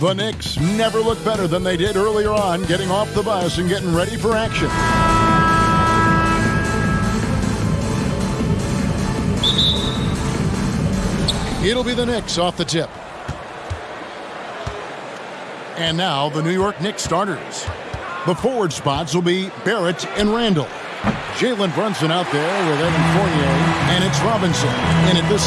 The Knicks never look better than they did earlier on, getting off the bus and getting ready for action. It'll be the Knicks off the tip. And now the New York Knicks starters. The forward spots will be Barrett and Randle. Jalen Brunson out there with Evan Fournier, and it's Robinson in at the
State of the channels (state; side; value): identical; both; correlation 1.00